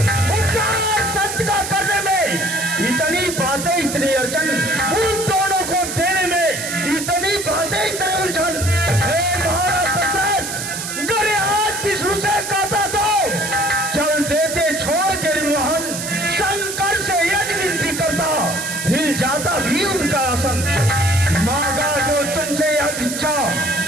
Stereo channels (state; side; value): noise; right; hiss, 6 dB below the sound